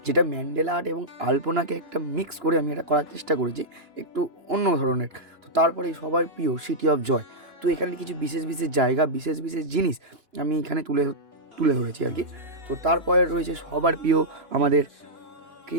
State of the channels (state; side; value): late; left; 2.9 ms